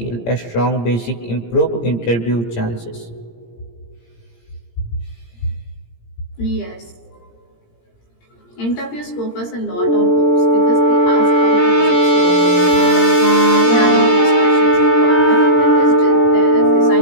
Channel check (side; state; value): right; late; 17 ms